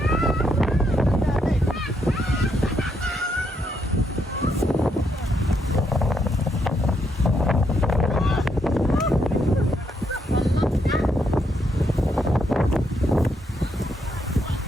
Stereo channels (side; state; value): both; normal; correlation 0.76